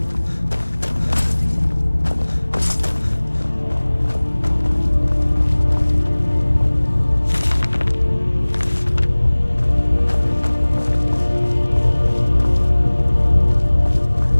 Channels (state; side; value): inverted; both; correlation -1.00